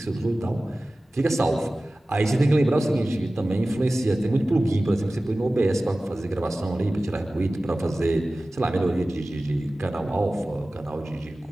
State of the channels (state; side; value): normal; both; correlation 0.97